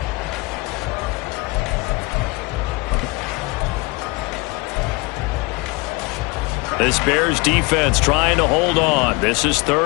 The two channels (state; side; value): quieter; right; 25.5 dB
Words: This Bears defense trying to hold on. This is